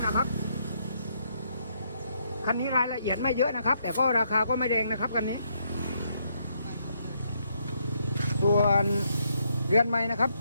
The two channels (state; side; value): inverted; both; correlation -0.75